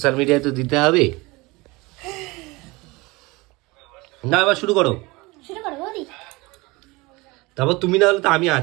মিডিয়ায় তো দিতে হবে না। এবার শুরু করো। শুরু করো বৌদি। তারপর তুমি না হলে তো আমি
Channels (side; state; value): left; quieter; 23.4 dB